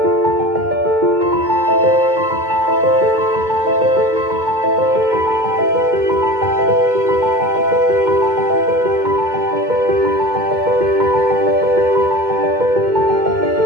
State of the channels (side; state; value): left; late; 2.2 ms